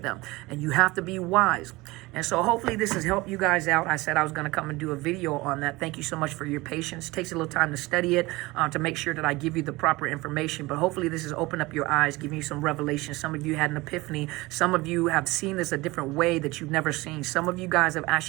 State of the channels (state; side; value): quieter; left; 21.5 dB